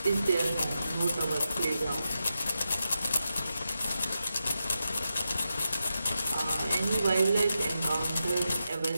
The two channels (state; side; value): inverted; both; correlation -0.88